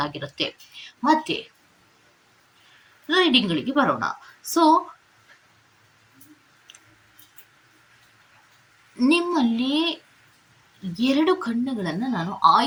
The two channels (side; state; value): both; identical; correlation 1.00